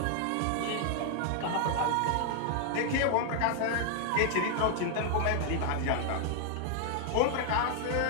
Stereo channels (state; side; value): different; both; correlation 0.00